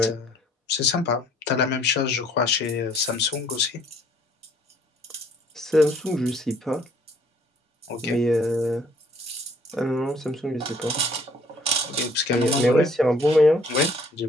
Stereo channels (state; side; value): normal; both; correlation 0.60